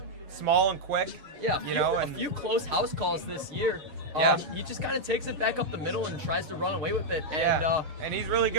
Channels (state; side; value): late; left; 7.4 ms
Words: small and quick. Yeah, and a few close house calls this year. Yeah. He just kind of takes it back up the middle and tries to run away with it. And, yeah, and he's really